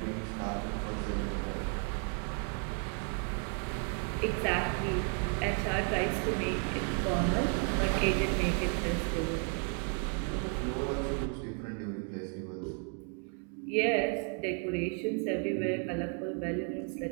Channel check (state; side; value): quieter; left; 39.6 dB